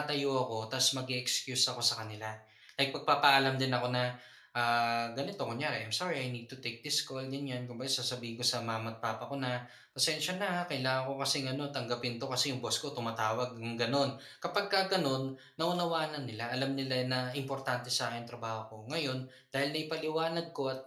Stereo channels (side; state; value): both; identical; correlation 1.00